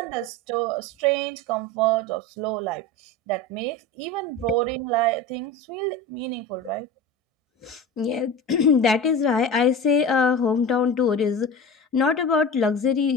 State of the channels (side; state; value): both; normal; correlation 0.30